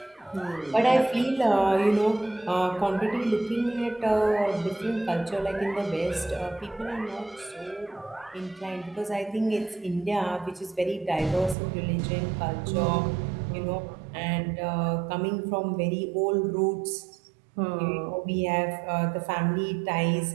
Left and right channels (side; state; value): left; drops out; at 11.6 s